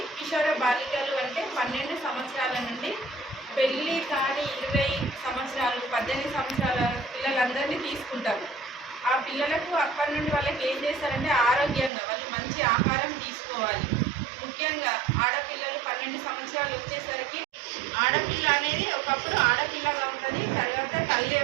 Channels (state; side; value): drops out; left; at 11.9 s